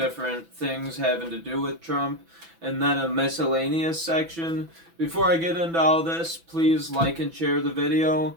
things having to do with Trump, and then a miscellaneous section. Before I get into all this, please like and share the video,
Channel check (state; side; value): late; left; 6.0 ms